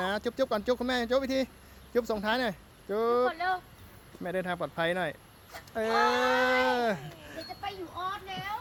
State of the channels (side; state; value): both; identical; correlation 1.00